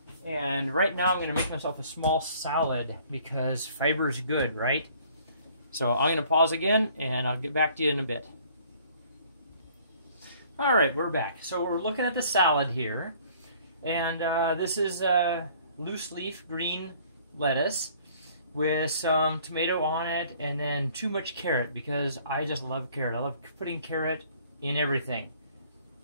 and right now I'm going to make myself a small salad because fiber is good, right? So I'm going to pause again, and I'll get back to you in a bit. All right, we're back. So we're looking at the salad here, and this is loose leaf green lettuce with some tomato on it, and then too much carrot because I just love carrot. I love putting carrot in everything.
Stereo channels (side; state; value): both; inverted; correlation -0.57